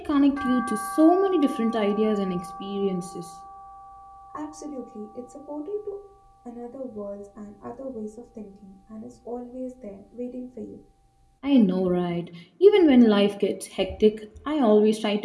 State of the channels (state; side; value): identical; both; correlation 1.00